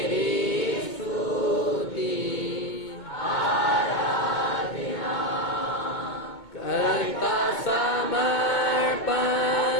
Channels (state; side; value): late; right; 2.2 ms